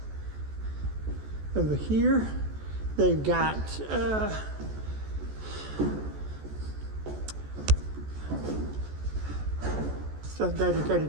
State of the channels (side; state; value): left; late; 14 ms